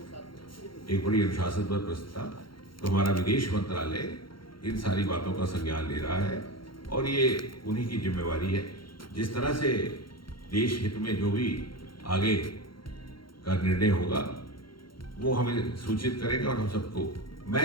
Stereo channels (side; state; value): right; late; 0.73 ms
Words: एक बड़ी अनुशासनबद्ध व्यवस्था। तो हमारा विदेश मंत्रालय इन सारी बातों का संज्ञान ले रहा है और ये उन्हीं की जिम्मेवारी है। जिस तरह से देश हित में जो भी आगे का निर्णय होगा वो हमें सूचित करेंगे और हम सबको।